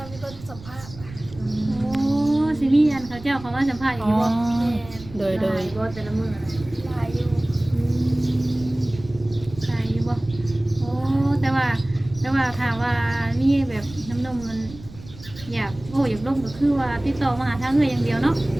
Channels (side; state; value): right; noise; rumble, 17 dB below the sound